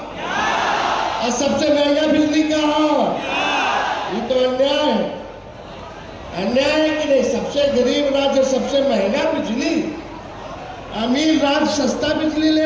और सबसे महंगा बिजली कहाँ? ये तो अन्याय है। अन्याय है कि नहीं? सबसे गरीब राज्य सबसे महंगा बिजली, अमीर राज्य सस्ता बिजली ले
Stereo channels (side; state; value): both; identical; correlation 1.00